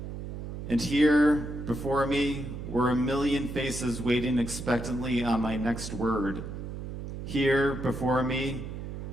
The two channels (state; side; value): noise; right; hum, 8 dB below the sound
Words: And here, before me, were a million faces waiting expectantly on my next word. Here, before me,